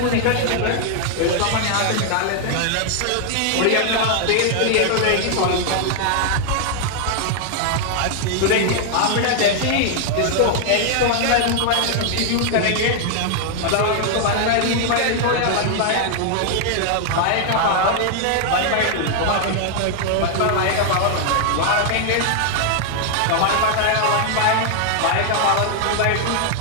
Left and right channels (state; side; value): different; both; correlation 0.00